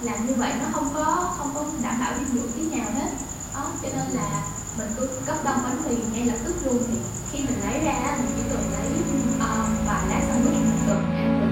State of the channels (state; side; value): identical; both; correlation 1.00